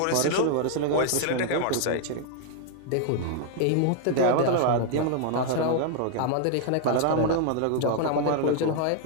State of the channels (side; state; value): both; different; correlation 0.00